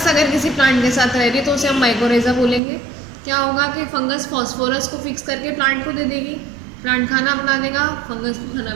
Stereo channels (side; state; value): left; drops out; at 2.6 s